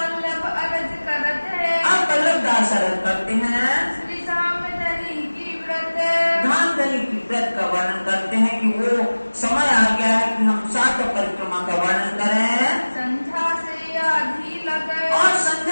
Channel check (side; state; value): both; inverted; correlation -1.00